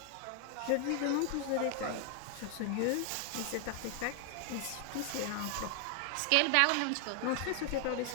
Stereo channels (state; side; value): different; both; correlation 0.00